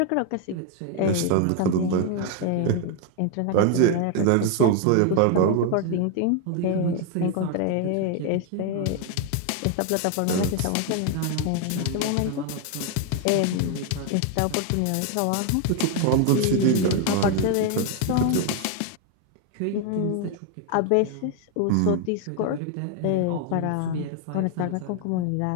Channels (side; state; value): both; different; correlation 0.01